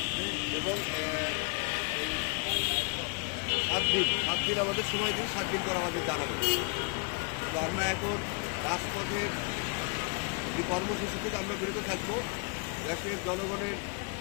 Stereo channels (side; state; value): right; quieter; 33.2 dB